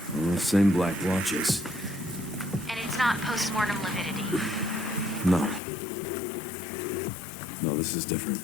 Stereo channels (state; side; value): drops out; right; at 5.6 s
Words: Same black watches. And it's not post-mortem lividity. No. No, this is different.